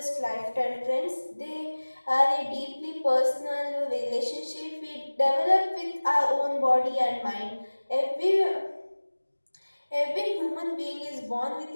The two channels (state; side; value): inverted; both; correlation -1.00